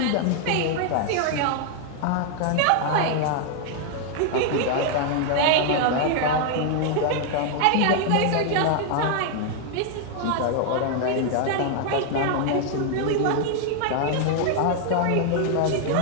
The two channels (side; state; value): both; different; correlation 0.00